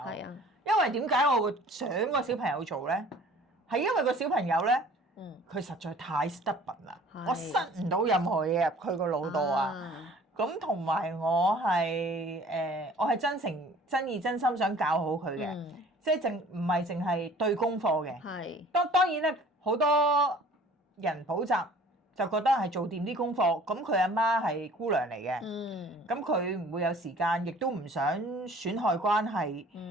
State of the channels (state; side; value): normal; both; correlation 0.50